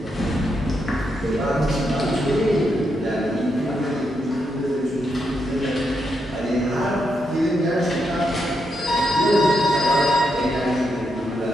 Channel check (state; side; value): normal; both; correlation 0.82